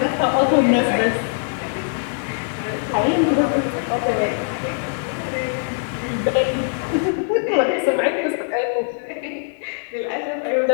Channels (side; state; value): right; silent; digital silence